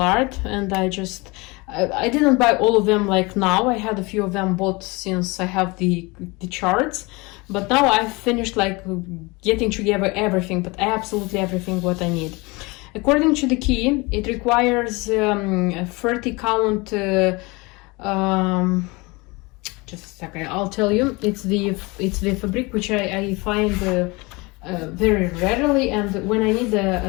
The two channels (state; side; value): quieter; right; 25.4 dB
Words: Art, and I didn't buy all of them like now. I had a few of them bought since I have the charts, but now I've finished like getting together everything, but absolutely everything what I need. According to the key, it requires a 30 count. Just a second, I'll tell you. It's the fabric which I find very rarely, and when I need